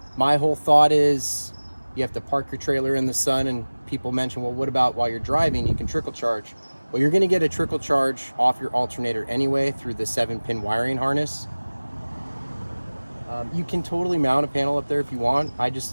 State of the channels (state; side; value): inverted; both; correlation -1.00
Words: My whole thought is you have to park your trailer in the sun, and people mention, well, what about while you're driving? You can trickle charge. Well, you're gonna get a trickle charge off your alternator anyway through the 7-pin wiring harness. You can totally mount a panel up there if you want. I just